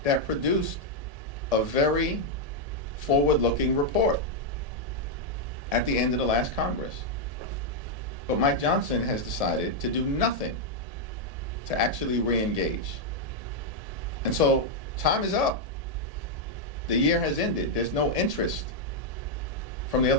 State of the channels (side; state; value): left; late; 1.7 ms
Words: that produced a very forward-looking report at the end of the last Congress. But Mike Johnson has decided to do nothing to actually re-engage. And so time is up. The year has ended. There's no interest from the